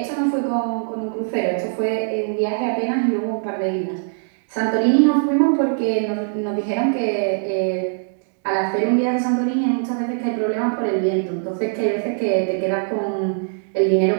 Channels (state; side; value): silent; left; digital silence